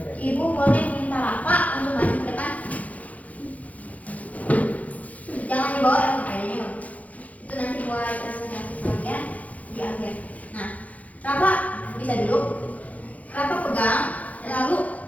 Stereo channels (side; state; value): right; late; 0.072 ms